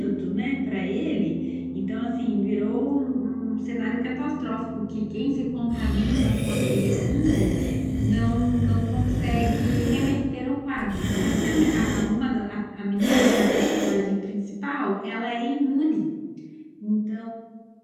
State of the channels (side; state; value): both; identical; correlation 1.00